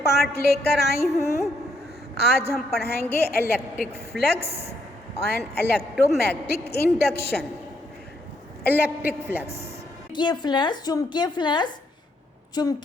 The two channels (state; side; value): normal; both; correlation 0.74